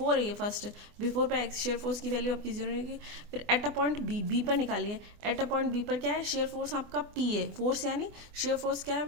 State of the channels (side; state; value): left; late; 24 ms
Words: है ये फर्स्ट, बिफोर पे एक्स शेयर फोर्स की वैल्यू आपकी 0 रहेगी। फिर एट अ पॉइंट बी पर निकालिए, एट अ पॉइंट बी पर क्या है, शेयर फोर्स आपका पी है, फोर्स यानी शेयर फोर्स क्या